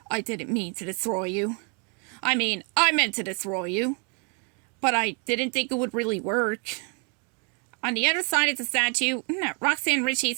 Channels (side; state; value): left; quieter; 36.0 dB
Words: I didn't mean to destroy you. I meant to destroy you. But I didn't think it would really work. On the other side of the statue, Roxanne Ritchie